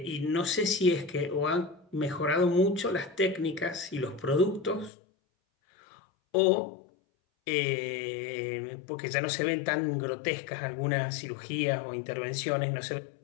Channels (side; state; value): right; drops out; at 4.9 s